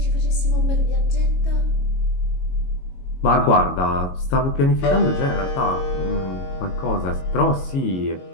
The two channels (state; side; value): late; right; 22 ms